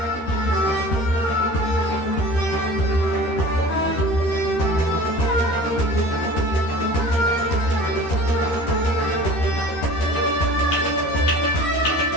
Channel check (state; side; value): late; right; 13 ms